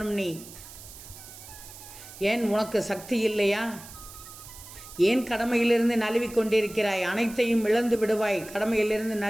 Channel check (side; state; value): right; noise; hiss, 16 dB below the sound